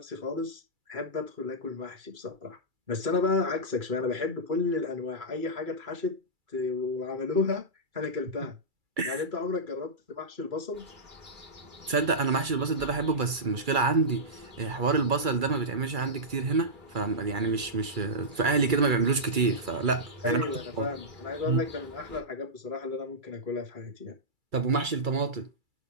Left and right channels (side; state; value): left; late; 2.3 ms